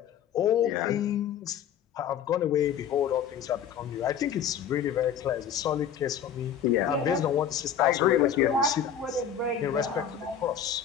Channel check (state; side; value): quieter; right; 8.4 dB